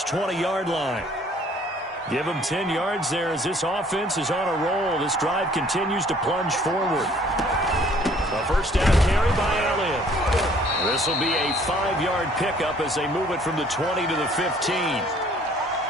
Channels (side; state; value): both; normal; correlation 0.58